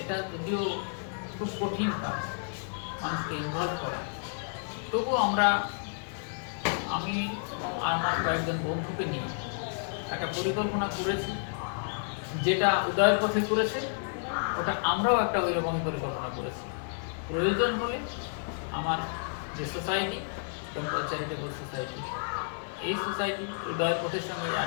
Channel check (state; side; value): silent; right; 57 dB below the other